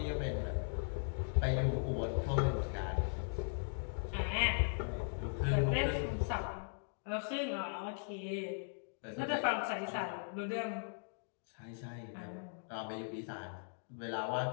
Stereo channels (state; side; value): silent; right; digital silence